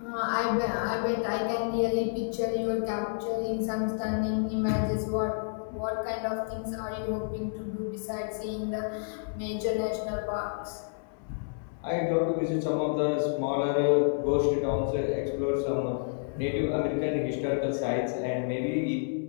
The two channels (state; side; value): silent; right; digital silence